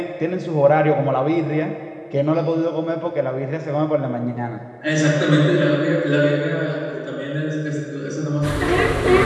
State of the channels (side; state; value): both; identical; correlation 1.00